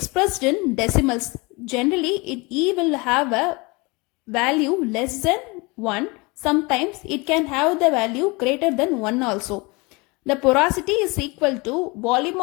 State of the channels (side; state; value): right; quieter; 26.4 dB